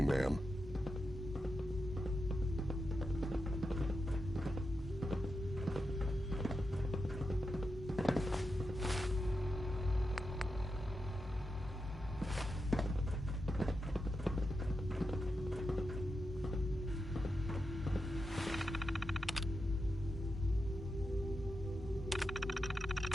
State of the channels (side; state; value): both; normal; correlation 0.88